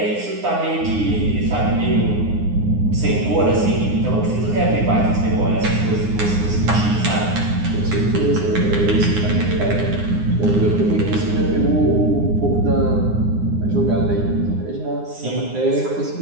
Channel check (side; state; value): left; late; 9.7 ms